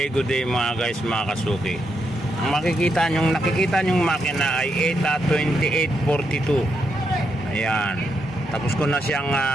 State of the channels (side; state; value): both; normal; correlation 0.81